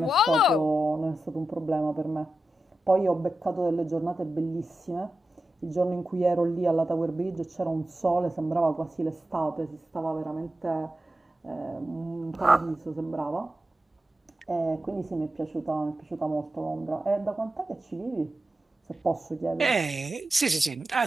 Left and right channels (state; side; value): normal; both; correlation 0.91